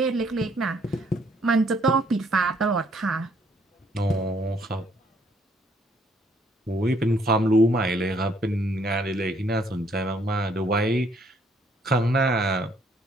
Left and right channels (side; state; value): both; normal; correlation 0.66